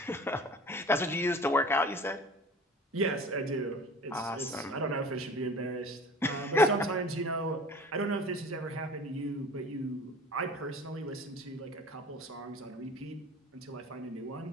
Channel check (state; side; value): normal; both; correlation 0.42